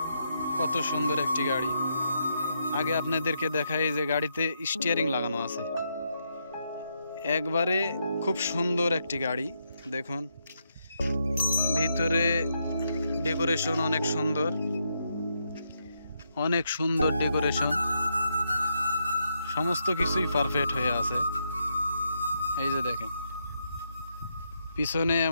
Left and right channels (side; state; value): both; inverted; correlation -0.80